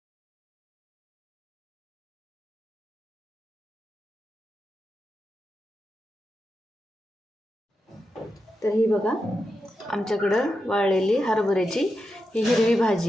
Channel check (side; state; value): both; normal; correlation 0.88